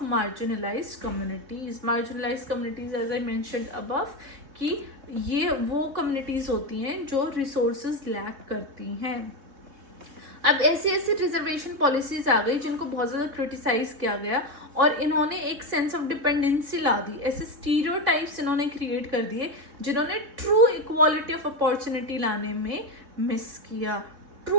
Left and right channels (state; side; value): late; left; 3.7 ms